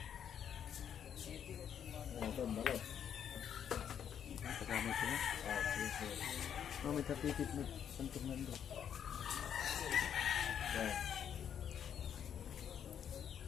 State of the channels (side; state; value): right; quieter; 8.8 dB